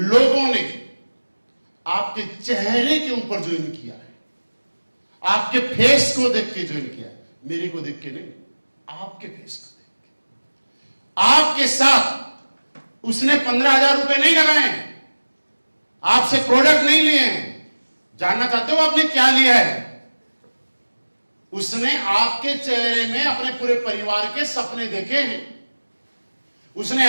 ने आपके चेहरे के ऊपर ज्वाइन किया है, आपके फेस को देख के ज्वाइन किया है, मेरे को देख के नहीं, आपके फेस को देख के। आपके साथ उसने 15,000 रुपए नहीं लगाए, आपसे प्रोडक्ट नहीं लिए हैं। जानना चाहते हो आपने क्या लिया है? उसने आपके चेहरे में अपने पूरे परिवार के सपने देखे हैं। उसने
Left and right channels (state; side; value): inverted; both; correlation -1.00